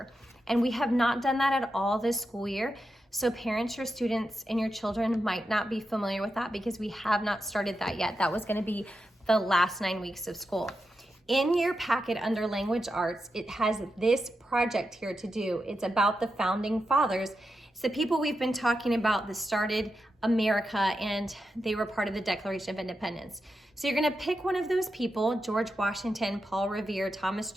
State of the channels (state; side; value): normal; both; correlation 0.88